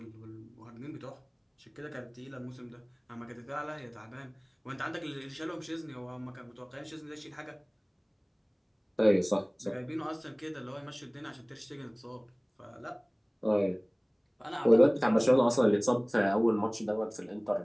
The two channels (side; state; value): both; identical; correlation 1.00